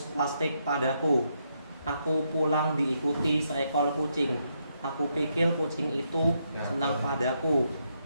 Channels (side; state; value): both; inverted; correlation -0.79